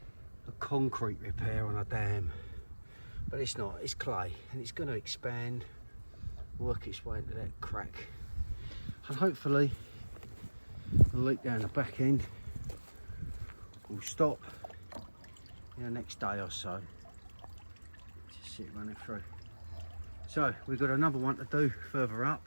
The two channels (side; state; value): both; inverted; correlation -1.00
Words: a concrete repair on a dam, but it's not, it's clay, and it's going to expand, work its way into that crack, and hopefully the leak down the back end will stop in the next day or so. Just see it running through. So we've got another one to do further